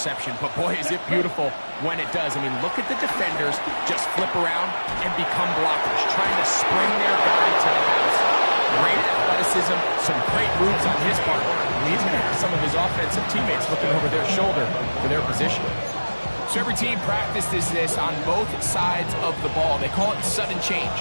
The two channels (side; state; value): both; inverted; correlation -1.00